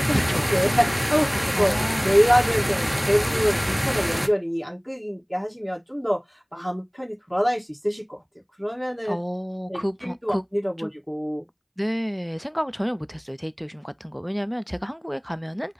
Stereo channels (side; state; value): both; identical; correlation 1.00